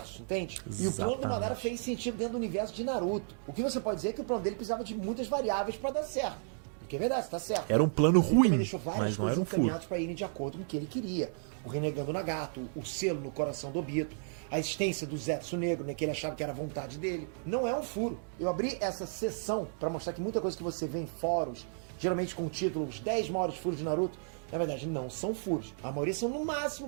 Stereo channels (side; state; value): left; silent; digital silence